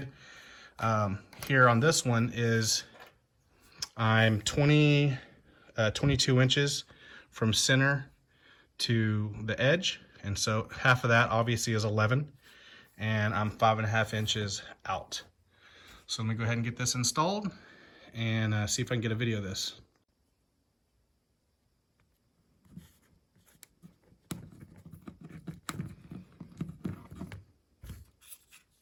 here on this one is I'm 22 inches from center to the edge, and so half of that obviously is 11, and I'm 5.5 inches out. So let me go ahead and get this installed and see if I can get a video of this.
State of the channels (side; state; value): both; identical; correlation 1.00